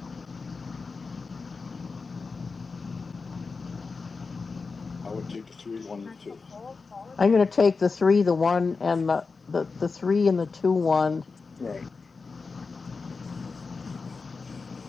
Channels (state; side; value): quieter; right; 4.5 dB